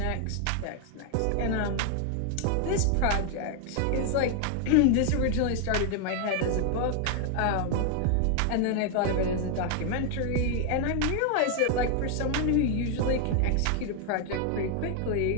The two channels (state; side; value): different; both; correlation 0.00